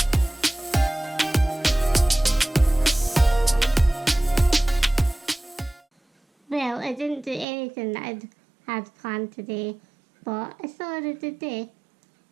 Well, I didn't do anything that I'd had planned today, but I still had a good day.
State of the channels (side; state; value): left; drops out; at 7.5 s